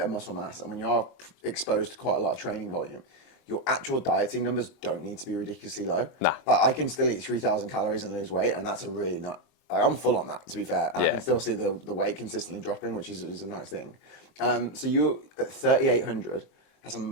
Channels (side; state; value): right; late; 22 ms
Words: of muscle mass and when you are exposed to quite a lot of training volume, your actual dieting numbers don't need to be ridiculously low. Nah. Like I can still eat 3,000 calories and lose weight, and that's a really not. Like, I'm full on that, to be fair, and I can still see the weight consistently dropping, which is a nice thing. So you're at 3,800. That's a